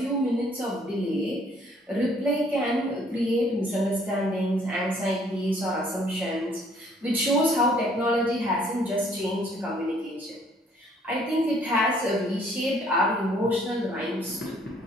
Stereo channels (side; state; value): both; normal; correlation 0.62